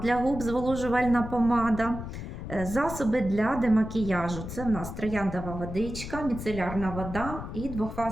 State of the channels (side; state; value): left; noise; rumble, 8 dB below the sound